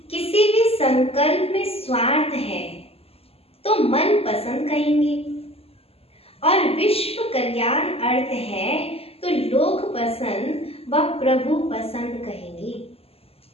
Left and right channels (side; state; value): right; late; 0.29 ms